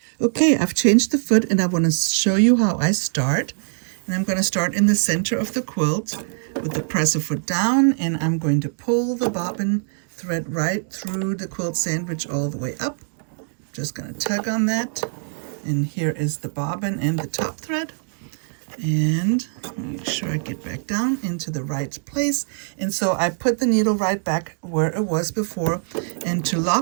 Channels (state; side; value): silent; left; digital silence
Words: Okay, I've changed the foot, and I want to show you how I start. And I'm going to start in the center of the quilt with the presser foot down, and I'm going to pull the bobbin thread right through the quilt sandwich all the way up. Just going to tug on that, and here is the bobbin and the top thread. And make sure I get back down into the right place. And so I put the needle right back where it was before, and to